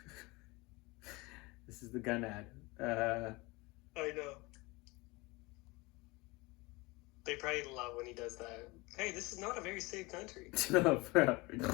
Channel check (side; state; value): right; quieter; 24.2 dB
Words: This is the gun ad. I know. They probably love when he does that. Hey, this is not a very safe country. No,